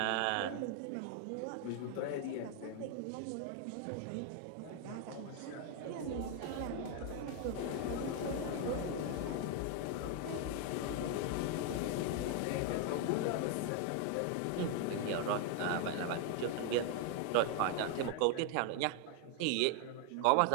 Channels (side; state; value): both; different; correlation 0.01